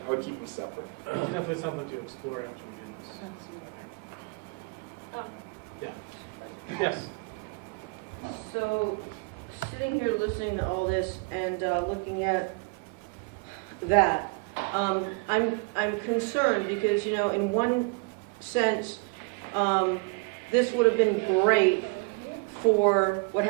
keep them separate. It's definitely something to explore after we do this. Yeah. Yes. So, sitting here listening to all this and looking at that, I'm concerned because, you know, in one sense, this would have been great for what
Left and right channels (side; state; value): left; quieter; 30.6 dB